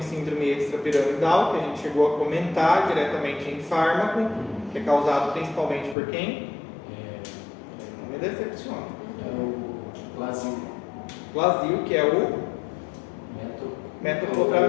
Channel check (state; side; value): drops out; right; at 6.0 s